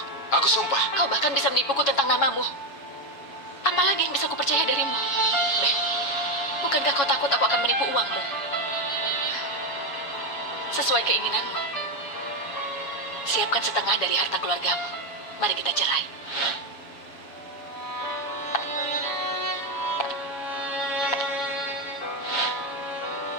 Aku sumpah. Kau bahkan bisa menipuku tentang namamu. Apalagi yang bisa kupercaya darimu? Ben, bukankah kau takut aku akan menipu uangmu? Sesuai keinginanmu. Siapkan setengah dari harta keluargamu. Mari kita cerai.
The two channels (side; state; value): right; late; 7.2 ms